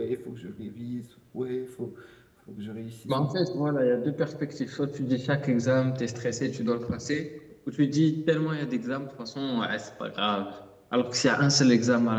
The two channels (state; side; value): identical; both; correlation 1.00